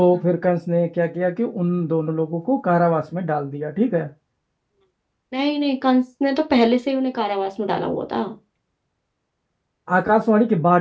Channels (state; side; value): identical; both; correlation 1.00